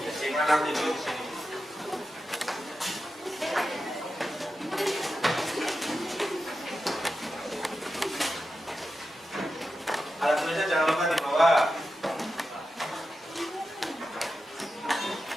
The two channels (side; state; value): both; normal; correlation 0.90